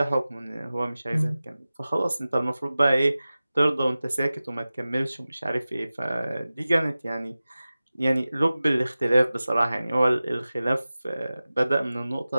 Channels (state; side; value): inverted; both; correlation -0.96